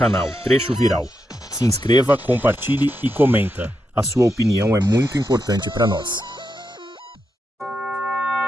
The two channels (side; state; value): both; normal; correlation 0.85